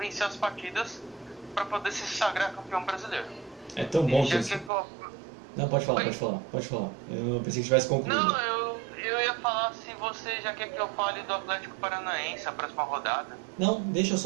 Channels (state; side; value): drops out; left; at 4.7 s